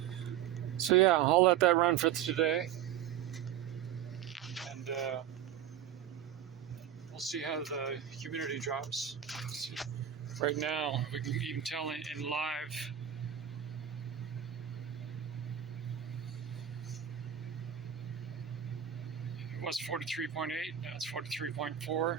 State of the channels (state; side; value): quieter; left; 10.0 dB